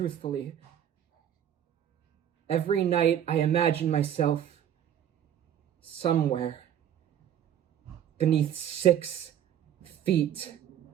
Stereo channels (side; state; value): left; quieter; 10.2 dB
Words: every night I imagine myself somewhere beneath 6 feet